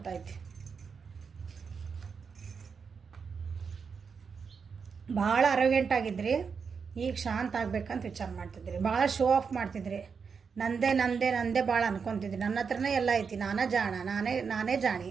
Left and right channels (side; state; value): left; quieter; 5.8 dB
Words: ಭಾಳ ಅರೋಗೆಂಟ್ ಆಗಿದ್ರಿ, ಈಗ ಶಾಂತ ಆಗ್ಬೇಕಂತ ವಿಚಾರ ಮಾಡ್ತಿದ್ರಿ. ಭಾಳ ಶೋ ಆಫ್ ಮಾಡ್ತಿದ್ರಿ. ನಂದೇ ನಂದೇ ನಂದೇ ಭಾಳ ಅನ್ಕೊತಿದ್ದೆ. ನನ್ನ ಹತ್ರನೇ ಎಲ್ಲ ಐತಿ, ನಾನೇ ಜಾಣ, ನಾನೇ ಜಾಣಿ,